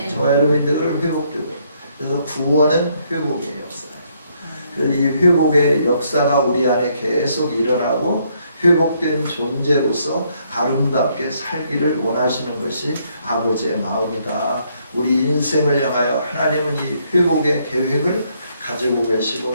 저와 여러분이 늘 회복되고 그래서 구원은 회복의 역사예요. 그래서 이 회복의 역사가 우리 안에 계속 일어나고 회복된 존재로서 아름답게 살기를 원하시는 것이 아버지의 마음이다. 우리 인생을 향하여 하나님은 이 회복의 계획을 가지고 계시고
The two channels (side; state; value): both; inverted; correlation -0.71